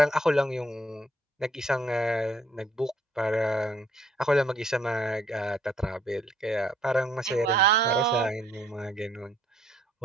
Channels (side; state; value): both; normal; correlation 0.66